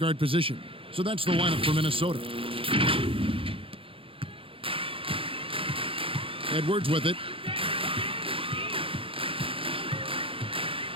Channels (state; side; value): late; left; 0.26 ms